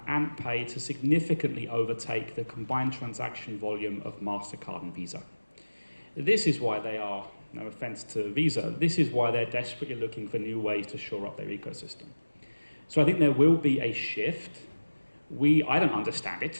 to significantly overtake the combined transaction volume of MasterCard and Visa. This is why they are, no offense to Visa, this is why they're desperately looking for new ways to shore up their ecosystem. So I think there will be a shift. I don't understand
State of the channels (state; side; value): inverted; both; correlation -1.00